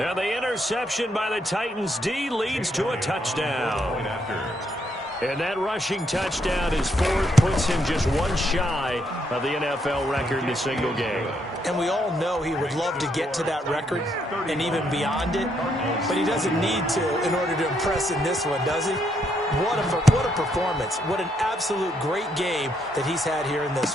the interception by the Titans D leads to a touchdown. And that rushing touchdown, his fourth, puts him just one shy of the NFL record in a single game. And we all know he would love to get to that record and even beyond it, but he doesn't need to in order to impress in this one, does he? What a performance. What an absolute great game that he's had here in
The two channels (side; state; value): both; normal; correlation 0.75